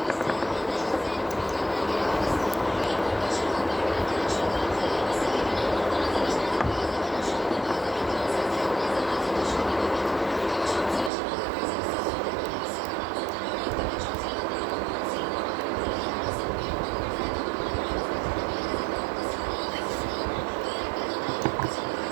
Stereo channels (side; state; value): left; drops out; at 11.1 s